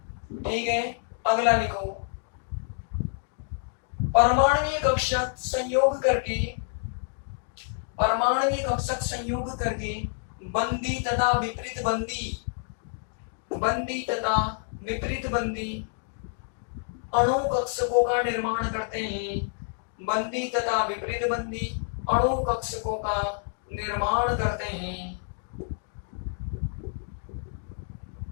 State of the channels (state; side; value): silent; right; digital silence